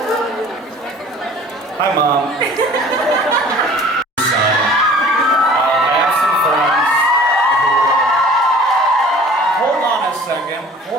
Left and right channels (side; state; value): both; normal; correlation 0.47